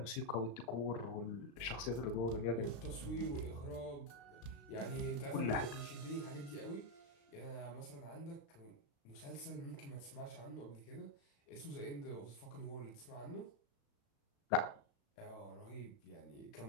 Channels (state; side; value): late; right; 35 ms